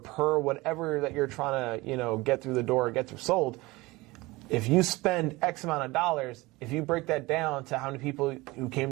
whatever that you're trying to get through the door or get through sold. If you spend X amount of dollars, if you break that down to how many people who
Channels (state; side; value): quieter; left; 21.6 dB